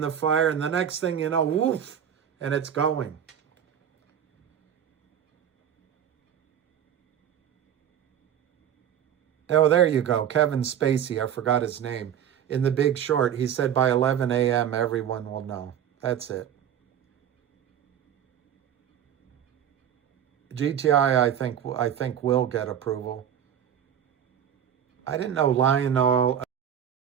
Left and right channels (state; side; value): quieter; left; 9.4 dB